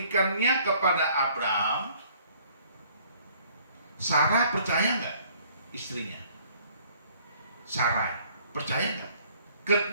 kepada Abraham, Sarah percaya nggak istrinya? Sarai percaya nggak?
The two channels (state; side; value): inverted; both; correlation -0.59